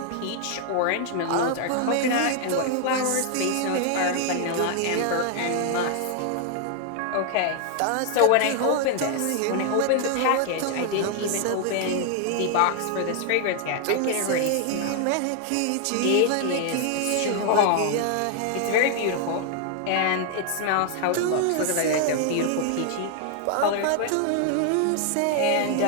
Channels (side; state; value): both; different; correlation 0.00